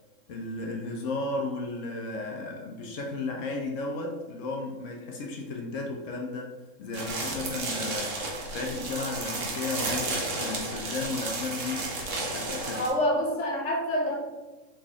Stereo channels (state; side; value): late; right; 3.7 ms